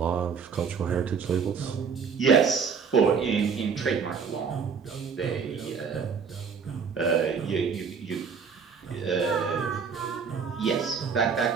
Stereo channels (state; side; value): quieter; left; 6.0 dB